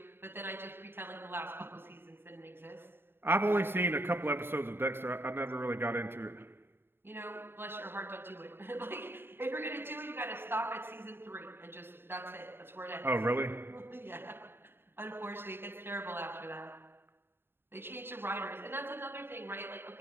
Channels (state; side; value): late; left; 0.11 ms